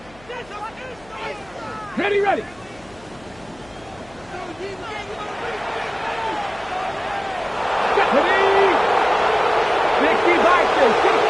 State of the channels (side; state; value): left; noise; hum, 26 dB below the sound